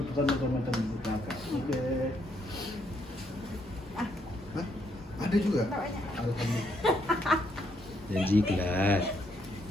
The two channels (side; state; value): both; normal; correlation 0.73